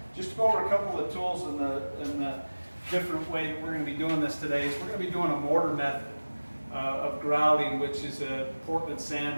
Just to go over a couple of the tools and the different way that we're going to be doing this today is we're going to be doing a mortar method of grouting, which is a Portland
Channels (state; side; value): inverted; both; correlation -1.00